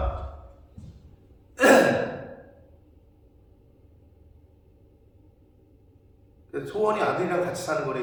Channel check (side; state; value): both; identical; correlation 1.00